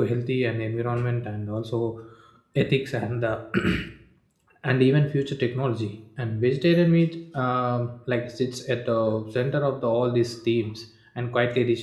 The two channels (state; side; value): identical; both; correlation 1.00